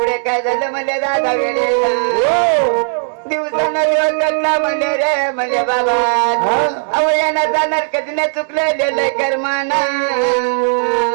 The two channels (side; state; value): left; silent; digital silence